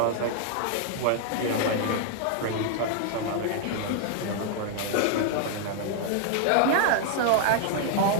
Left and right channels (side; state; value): both; different; correlation 0.00